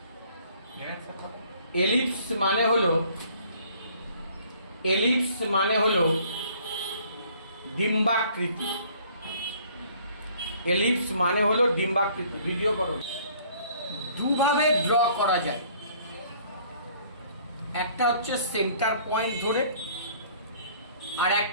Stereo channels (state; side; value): inverted; both; correlation -0.57